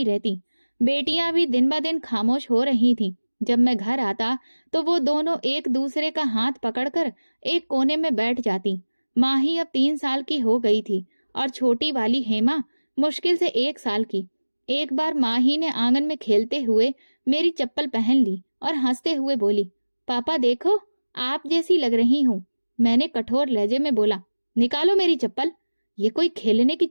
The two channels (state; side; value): inverted; both; correlation -1.00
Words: रहती। बेटियां भी दिन ब दिन खामोश हो रही थीं। जब मैं घर आता तो वो दोनों एक दूसरे का हाथ पकड़कर एक कोने में बैठ जाती। माही अब 3 साल की हो गई थी और छोटी वाली हेमा मुश्किल से 1 साल की। एक बार माही ने आंगन में खेलते हुए मेरी चप्पल पहन ली और हंसते हुए बोली, पापा देखो, आप जैसी लग रही हूँ। मैंने कठोर लहजे में बोला, निकालो मेरी चप्पल, ये कोई खेलने की